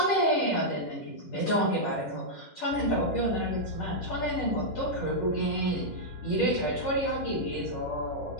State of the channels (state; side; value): late; right; 10 ms